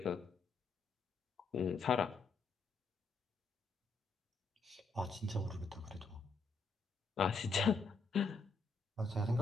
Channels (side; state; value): right; quieter; 4.1 dB